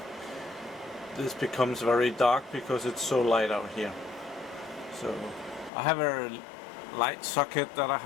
this becomes very dark because it's so light out here. So I have a light socket that I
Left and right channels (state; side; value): drops out; right; at 5.7 s